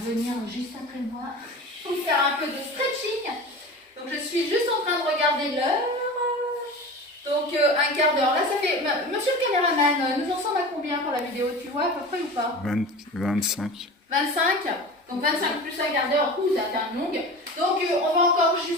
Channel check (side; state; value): both; normal; correlation 0.33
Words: venir juste après moi pour faire un peu de stretching. Donc je suis juste en train de regarder l'heure. Donc un quart d'heure. Là, ça fait. Monsieur le caméraman, nous en sommes à combien pour la vidéo? Tu vois à peu près ou pas? 25. 25. Donc 25 plus un quart d'heure. Ouh, ça fait un longue. Donc on va encore